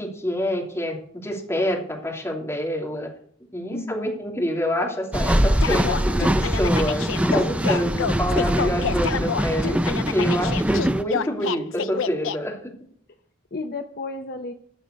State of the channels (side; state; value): both; normal; correlation 0.70